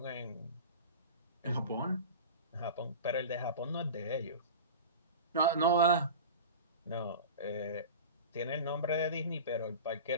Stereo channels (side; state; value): both; inverted; correlation -0.32